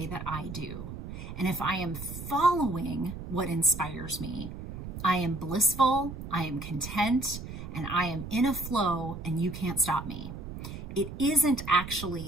that I do. And if I am following what inspires me, I am blissful, I am content, and I am in a flow and you can't stop me. It isn't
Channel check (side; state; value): right; noise; rumble, 9 dB below the sound